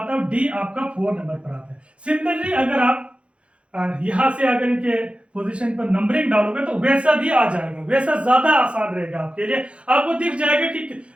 है, और D आपका 4 नंबर पर आता है। सिमिलरली अगर आप यहां से अगर इनके पोजीशन पर नंबरिंग डालोगे तो वैसा भी आ जाएगा, वैसा ज्यादा आसान रहेगा आपके लिए। आपको दिख जाएगा कि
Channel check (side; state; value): left; late; 0.060 ms